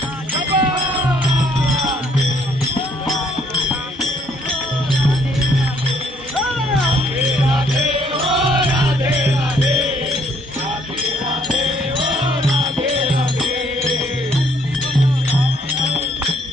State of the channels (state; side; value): normal; both; correlation 0.65